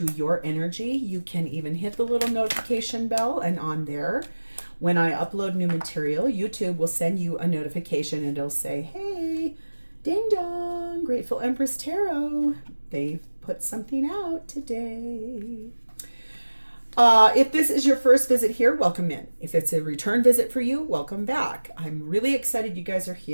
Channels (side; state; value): both; inverted; correlation -1.00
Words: your energy, you can even hit the little notification bell, and on there, when I upload new material, YouTube will send you a notification and it'll say, hey, ding dong, Grateful Empress Tarot. They've put something out today. If this is your first visit here, welcome in. If it's a return visit for you, welcome back. I'm really excited you guys are